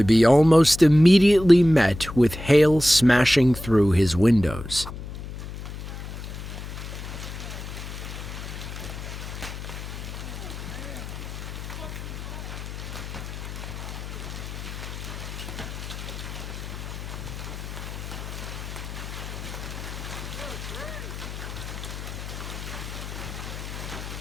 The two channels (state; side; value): noise; left; hum, 9 dB below the sound